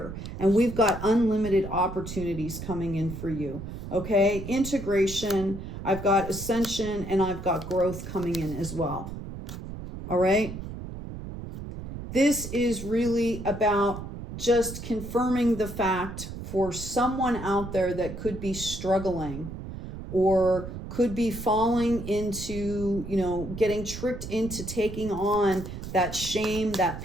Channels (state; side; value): noise; right; rumble, 9 dB below the sound